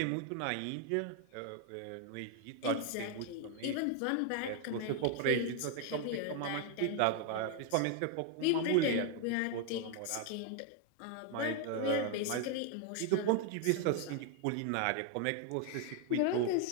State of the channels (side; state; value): both; different; correlation 0.01